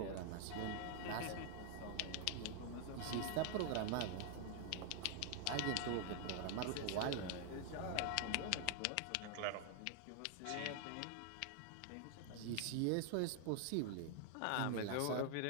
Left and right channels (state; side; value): different; both; correlation 0.00